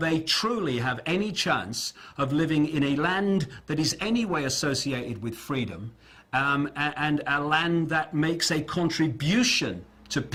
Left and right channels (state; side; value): identical; both; correlation 1.00